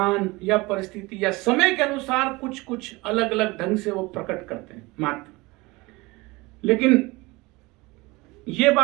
या परिस्थिति या समय के अनुसार कुछ अलग अलग ढंग से वो प्रकट करते हैं मात्र। लेकिन ये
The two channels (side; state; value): left; quieter; 22.9 dB